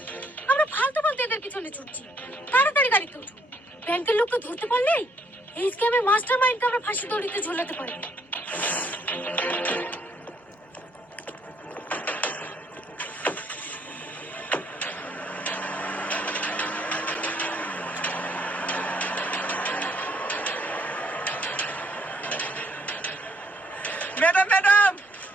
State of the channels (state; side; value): normal; both; correlation 0.68